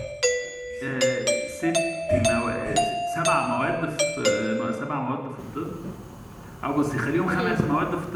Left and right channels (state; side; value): identical; both; correlation 1.00